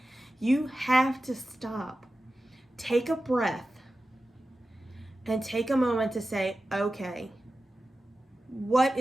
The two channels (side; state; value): both; normal; correlation 0.94